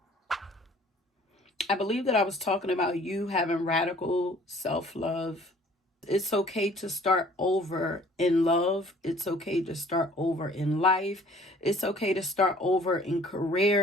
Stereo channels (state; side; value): normal; both; correlation 0.54